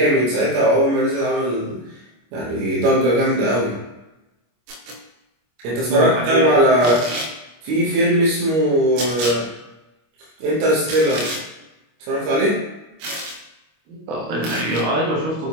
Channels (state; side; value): late; left; 25 ms